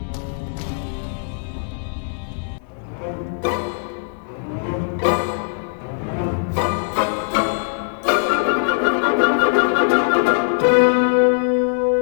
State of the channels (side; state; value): right; silent; digital silence